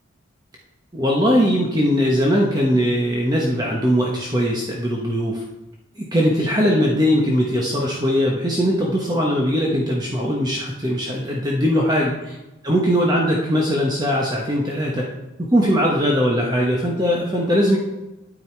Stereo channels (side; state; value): both; normal; correlation 0.69